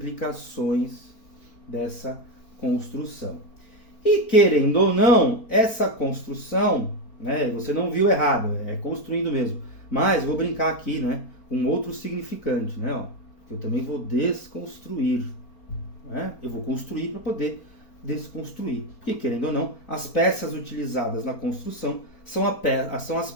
dessa construção. E querendo ou não, essa construção, né, você não viu errado, é construindo mesmo. Mas vou brincar aqui, né, com outro significante, né, ó, que eu também vou desconstruir, né? Eu vou construir para poder desconstruir. Porque querendo ou não, as peças utilizadas na construção são as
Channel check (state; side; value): late; right; 4.4 ms